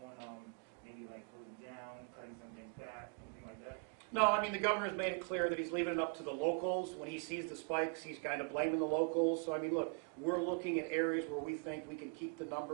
on maybe like closing down, cutting some things back, anything like that? No, I mean, the governor's made it clear that he's leaving it up to the locals. When he sees the spikes, he's kind of blaming the locals. So, I mean, look, we're looking at areas where we think we can keep the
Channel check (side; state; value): left; quieter; 37.2 dB